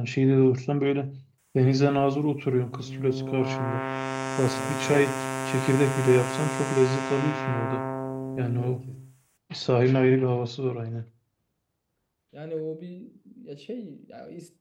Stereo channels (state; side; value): identical; both; correlation 1.00